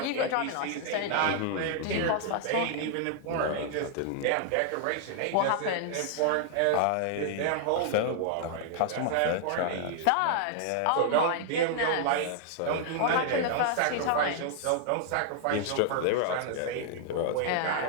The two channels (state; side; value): different; both; correlation 0.00